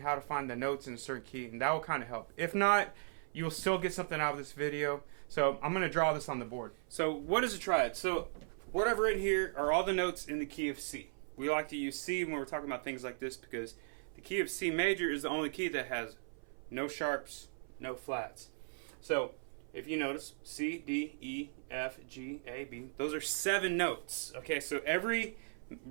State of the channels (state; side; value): silent; left; 53 dB below the other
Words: how to find the notes in a certain key, and that will kind of help. If not, you'll still get something out of this video. So I'm going to draw this on the board. So what is a triad? So what I've written here are all the notes in the key of C. We like to use C when we're talking about things like this because the key of C major is the only key that has no sharps, no flats. So if you notice, C, D, E, F, G, A, B, those are 7 notes. Okay, so every